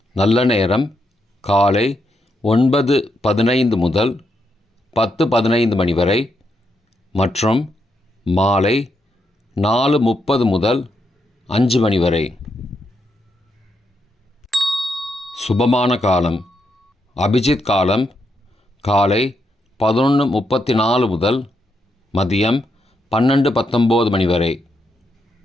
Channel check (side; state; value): both; normal; correlation 0.81